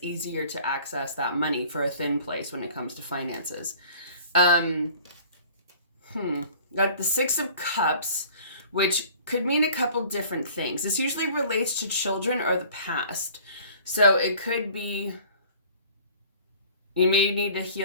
easier to access that money, for a thin place when it comes to finances. Got the Six of Cups, which could mean a couple different things. This usually relates to children or the past. So it could be you may need to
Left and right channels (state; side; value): inverted; both; correlation -0.49